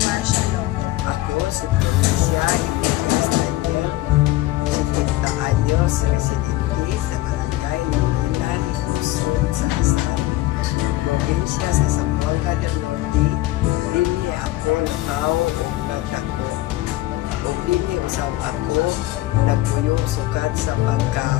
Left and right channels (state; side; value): quieter; right; 16.8 dB